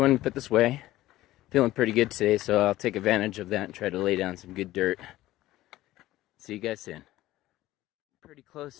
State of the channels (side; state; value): right; quieter; 16.0 dB